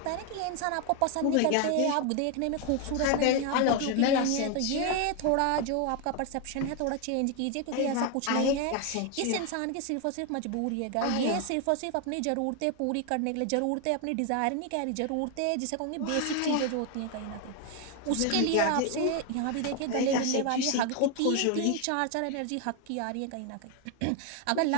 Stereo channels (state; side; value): different; both; correlation 0.01